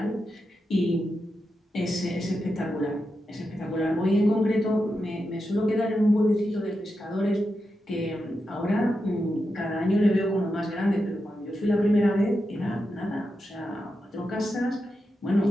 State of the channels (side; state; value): both; normal; correlation 0.88